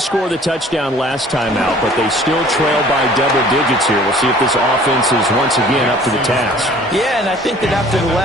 the touchdown last time out, but they still trail by double digits here. We'll see if this offense is once again up to the task. Yeah, and I think that after the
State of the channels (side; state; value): both; normal; correlation 0.51